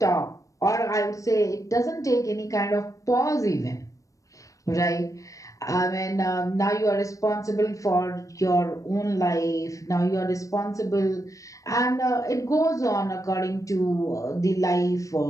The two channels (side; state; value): right; late; 0.16 ms